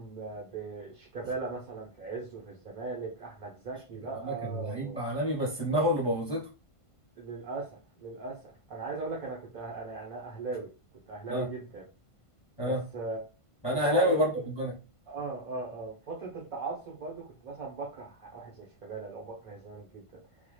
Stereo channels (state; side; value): late; right; 1.5 ms